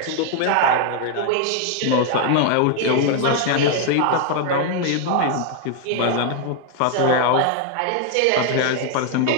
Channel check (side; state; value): both; different; correlation 0.00